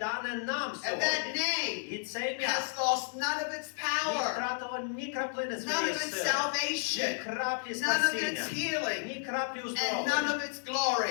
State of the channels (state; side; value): silent; right; digital silence